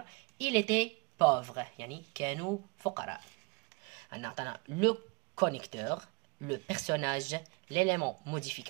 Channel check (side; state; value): left; quieter; 27.9 dB